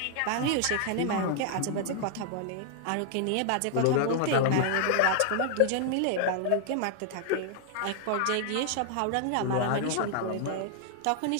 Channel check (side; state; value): both; different; correlation -0.01